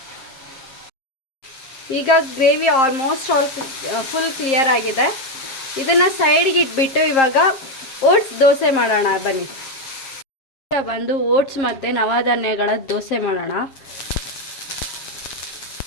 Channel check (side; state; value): right; late; 7.5 ms